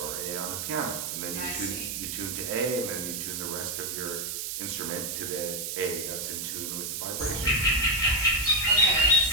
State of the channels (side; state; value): right; noise; hiss, 4 dB below the sound